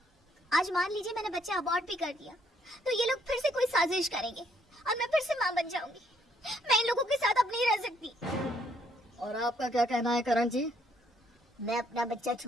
आज मान लीजिए मैंने बच्चा अबॉर्ट भी कर दिया तो ये लोग फिर से कोई साजिश करेंगे और मैं फिर से माँ बन जाऊंगी। मैं इन लोगों के साथ अब नहीं रह सकती। और आपका क्या कहना है करण जी? मैं अपना बच्चा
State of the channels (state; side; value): normal; both; correlation 0.68